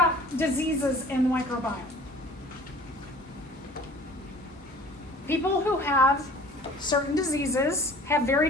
diseases in the microbiome. People who have certain diseases have very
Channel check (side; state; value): both; normal; correlation 0.47